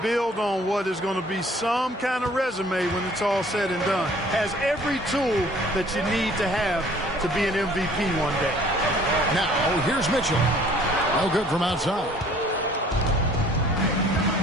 build on what is going to be some kind of resume when it's all said and done. Has every tool that you need to have to be an MVP one day. Now, here's Mitchell. No good from outside.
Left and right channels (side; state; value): both; normal; correlation 0.54